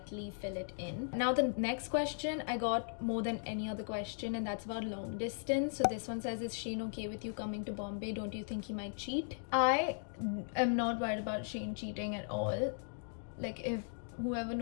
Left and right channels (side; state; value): right; silent; digital silence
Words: fill it in. Now the next question, I got more than any other question, and that's about long distance. So this one says, is Shane okay with you coming to Bombay? Don't you think he might cheat? I am not worried about Shane cheating at all. Like, if whoever